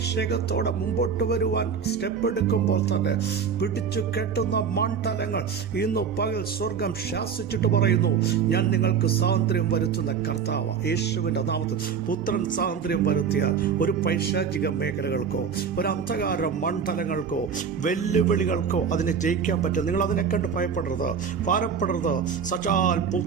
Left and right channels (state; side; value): quieter; left; 6.7 dB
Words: മുമ്പോട്ട് വരുവാൻ സ്റ്റെപ്പ് എടുക്കുമ്പോൾ തന്നെ പിടിച്ചു കെട്ടുന്ന മണ്ഡലങ്ങൾ ഇന്നു പകൽ സ്വർഗം ശാസിച്ചിട്ട് പറയുന്നു, ഞാൻ നിങ്ങൾക്ക് സ്വാതന്ത്ര്യം വരുത്തുന്ന കർത്താവ്. യേശുവിൻ്റെ നാമത്തിൽ പുത്രൻ സ്വാതന്ത്ര്യം വരുത്തിയാൽ ഒരു പൈശാചിക മേഖലകൾക്കോ ഒരു അന്ധകാര മണ്ഡലങ്ങൾക്കോ വെല്ലുവിളികൾക്കോ അതിനെ ജയിക്കാൻ പറ്റും. നിങ്ങൾ അതിനെ കണ്ട് ഭയപ്പെടരുത്, ഭാരപ്പെടരുത്. സച്ചാൽ